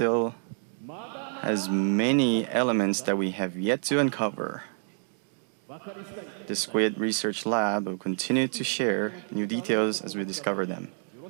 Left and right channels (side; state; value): left; silent; 59 dB below the other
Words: has many elements that we have yet to uncover. The Squid Research Lab will continue to share new details as we discover them.